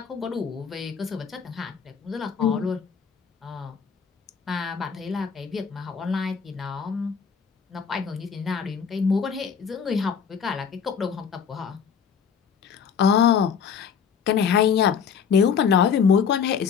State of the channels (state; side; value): quieter; right; 6.8 dB